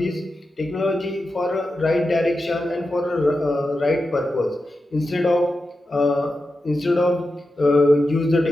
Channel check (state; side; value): normal; both; correlation 0.90